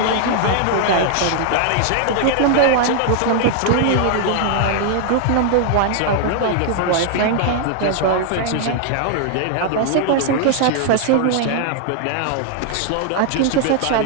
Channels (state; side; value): different; both; correlation 0.00